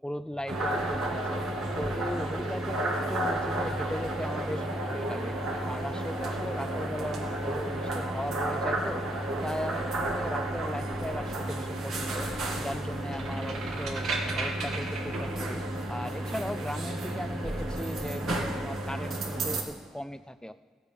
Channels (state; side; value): normal; both; correlation 0.74